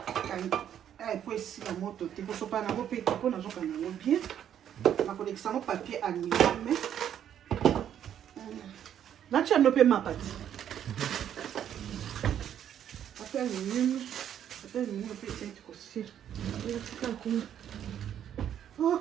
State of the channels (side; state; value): left; quieter; 9.8 dB